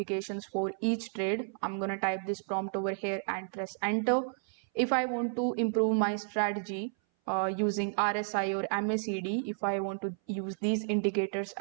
for each trade, I'm going to type this prompt over here and press enter. If I want to improve my strategy, using RSI or MACD. If I want to use these indicators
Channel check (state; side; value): silent; left; 57 dB below the other